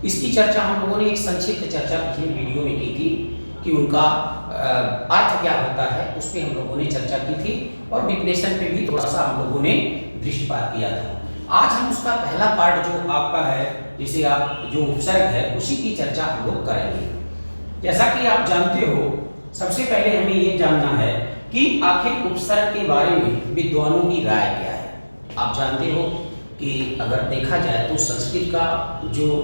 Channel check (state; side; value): inverted; both; correlation -1.00